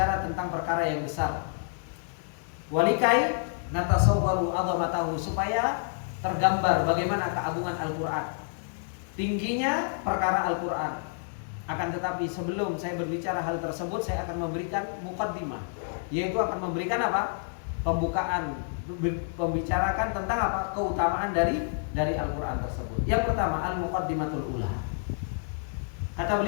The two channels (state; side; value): silent; right; digital silence